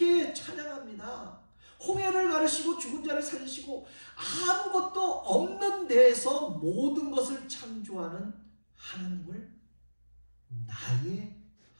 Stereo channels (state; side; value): inverted; both; correlation -1.00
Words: 찬양합니다. 홍해를 가르시고 죽은 자를 살리시고 아무것도 없는 데에서 모든 것을 창조하는 하나님을 나의